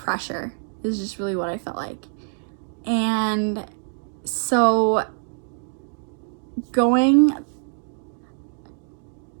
is just really what I felt like. And so going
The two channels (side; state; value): left; silent; digital silence